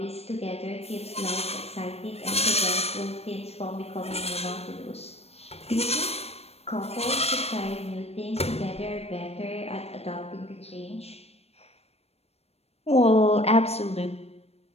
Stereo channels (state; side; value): late; right; 0.30 ms